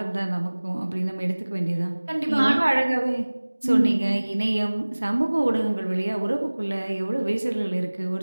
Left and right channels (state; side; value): inverted; both; correlation -1.00